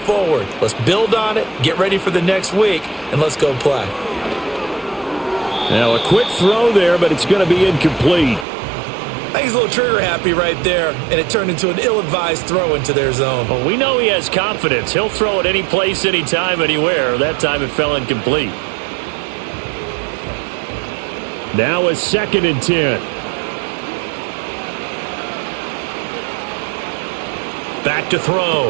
Let's build on it, get ready for the next week, and let's go play. Now a quick throw there, but it's going to be incomplete. I think he's a little trigger happy right there, and it turned into an ill-advised throw into their zone. Well, we know he has confidence. He'll throw it any place, anytime, anywhere. That time it fell incomplete. Now a 2nd and 10. Back to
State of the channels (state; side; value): drops out; left; at 8.5 s